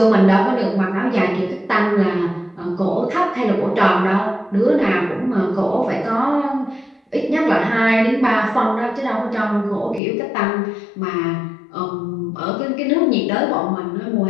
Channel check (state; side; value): drops out; right; at 10.0 s